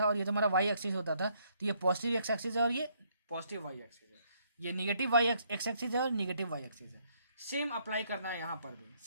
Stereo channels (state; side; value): inverted; both; correlation -0.69